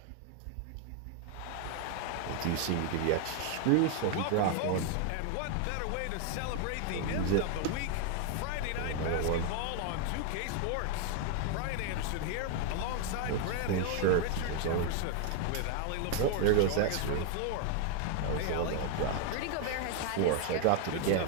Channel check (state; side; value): different; both; correlation 0.00